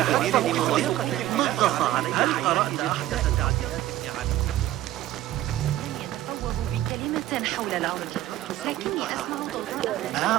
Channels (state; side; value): quieter; left; 14.2 dB